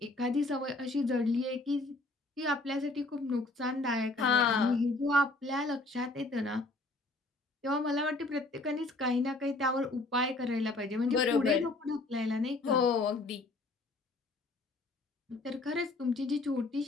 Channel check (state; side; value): quieter; right; 3.0 dB